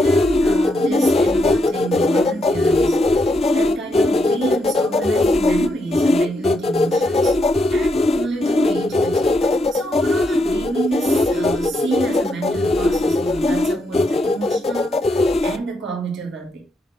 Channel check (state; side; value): normal; both; correlation 0.79